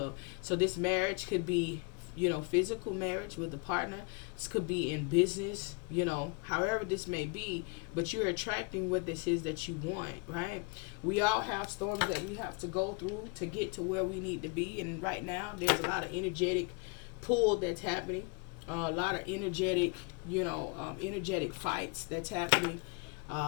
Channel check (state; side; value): quieter; right; 30.9 dB